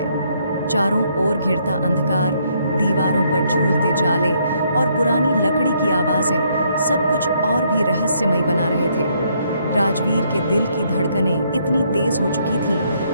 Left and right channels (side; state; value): both; inverted; correlation -0.71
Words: चारों ओर घिरता अंधकार, दीवारों पर झूलते जाले और पुरानी लकड़ी की आवाजें सब कुछ और भी रहस्यमय बना रहे थे। राजवीर के दिल की धड़कनें इतनी तेज हो चुकी